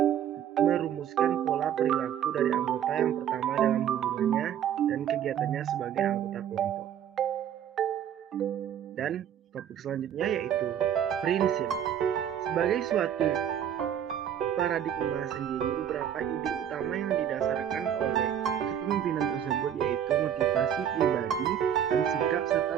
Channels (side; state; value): left; quieter; 9.5 dB